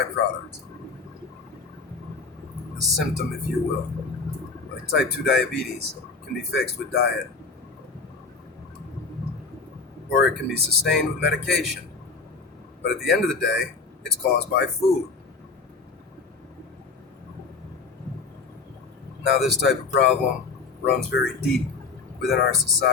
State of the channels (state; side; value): quieter; right; 4.5 dB